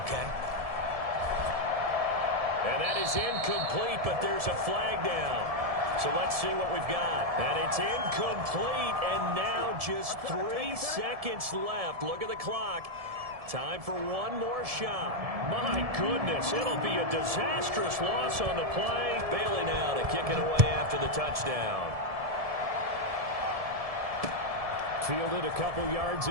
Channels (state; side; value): late; left; 1.7 ms